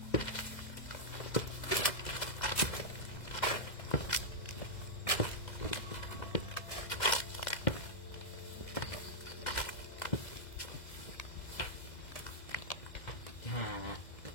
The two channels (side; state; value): right; late; 2.0 ms